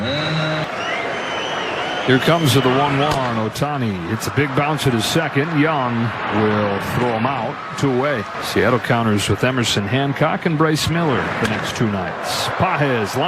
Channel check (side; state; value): both; identical; correlation 1.00